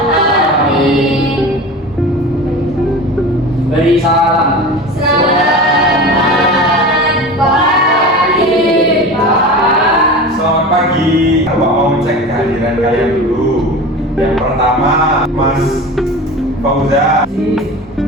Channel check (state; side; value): normal; both; correlation 0.32